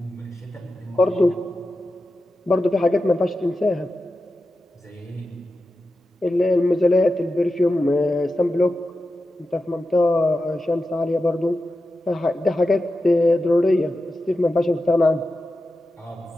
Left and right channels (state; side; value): normal; both; correlation 0.91